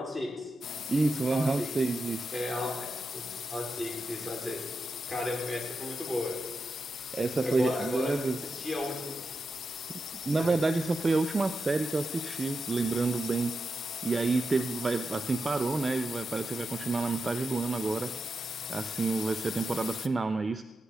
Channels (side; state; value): both; normal; correlation 0.88